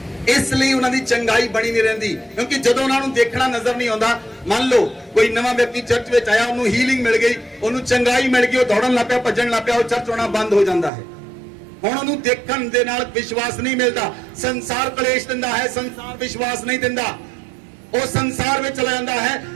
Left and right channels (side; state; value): left; drops out; at 10.9 s